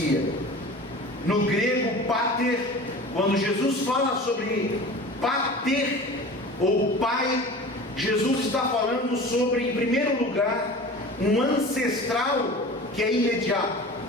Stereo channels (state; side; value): normal; both; correlation 0.37